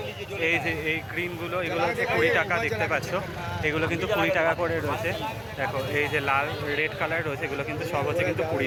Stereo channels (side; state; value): both; identical; correlation 1.00